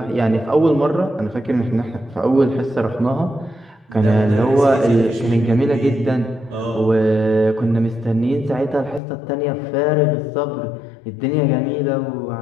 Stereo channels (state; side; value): drops out; right; at 9.0 s